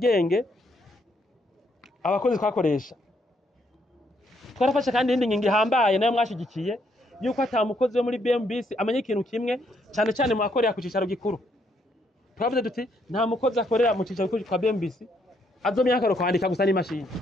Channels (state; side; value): normal; both; correlation 0.73